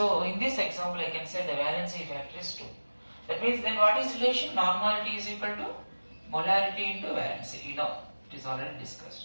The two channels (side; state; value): both; inverted; correlation -1.00